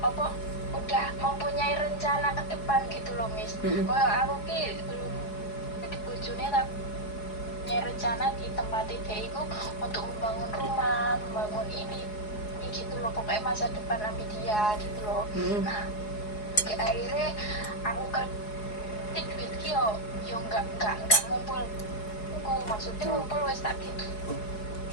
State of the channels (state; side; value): late; right; 4.7 ms